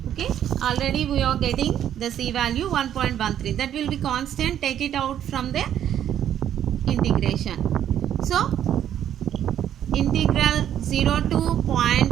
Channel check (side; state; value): left; quieter; 10.4 dB